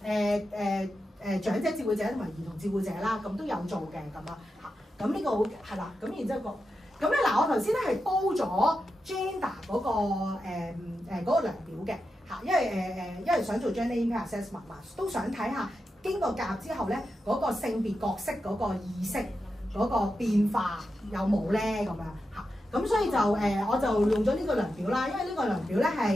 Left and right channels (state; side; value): normal; both; correlation 0.89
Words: 長者照顧者同埋兒童照顧者啦，咁都有做嘅咁啊嚇。咁呢個好係啦，咁然之後咁咧嗱，我頭先咧係煲咗 gender 嗰個量表嘅。嚇，因為想做 gender impact assessment 嘛，都想睇下經過夾之後咧，嗰個性別角色嗰個意識嗰個變化有冇咧咁樣嚇。咁所以就我就用咗呢個量表啦，因為呢個量表咧